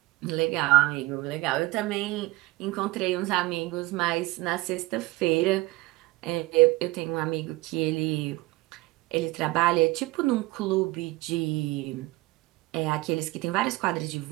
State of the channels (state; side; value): quieter; left; 20.1 dB